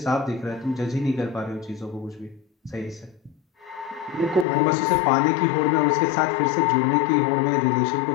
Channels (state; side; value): drops out; right; at 4.5 s